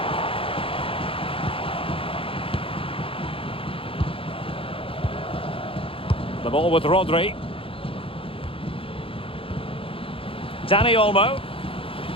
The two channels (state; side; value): late; right; 0.27 ms